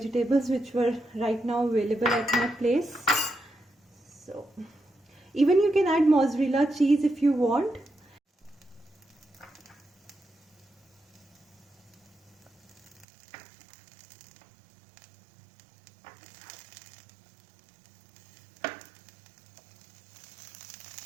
which were right now available at my place. So even you can add mozzarella cheese if you want.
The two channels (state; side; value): drops out; left; at 13.1 s